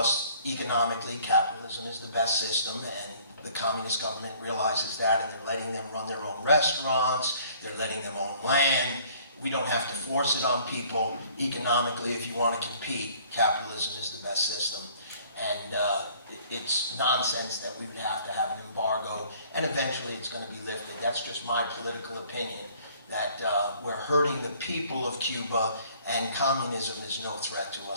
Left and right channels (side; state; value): both; inverted; correlation -0.57